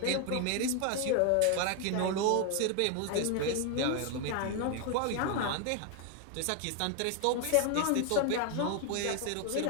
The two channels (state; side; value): different; both; correlation 0.01